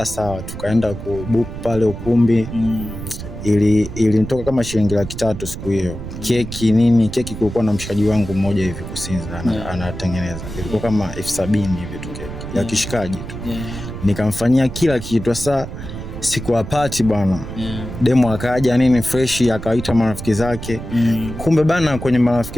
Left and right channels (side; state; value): right; noise; rumble, 9 dB below the sound